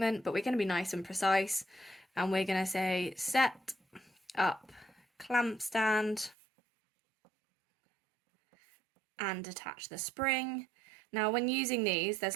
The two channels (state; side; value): drops out; left; at 6.4 s